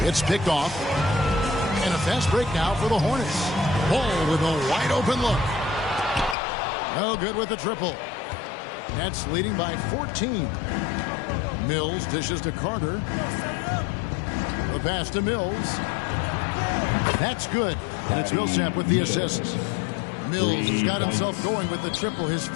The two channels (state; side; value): drops out; right; at 6.4 s